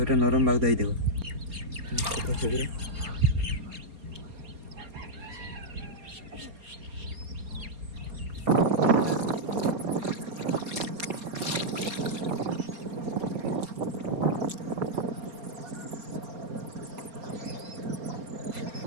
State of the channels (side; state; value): left; late; 4.3 ms